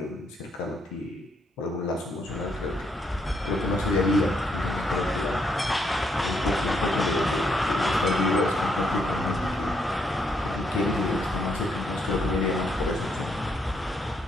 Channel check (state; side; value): normal; both; correlation 0.75